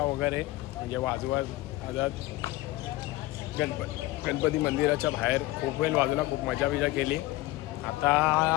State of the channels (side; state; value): right; quieter; 18.5 dB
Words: वगैरे म्हणजे वाजवत गणपती मंदिराच्या बाहेर खूप वेळ वाजवला खूप मजा बिजा केली